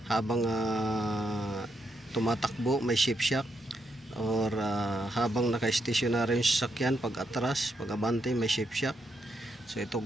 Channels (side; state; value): both; normal; correlation 0.80